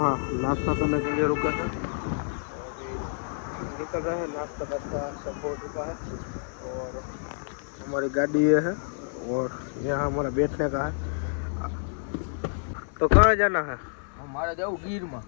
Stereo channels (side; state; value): right; silent; 59 dB below the other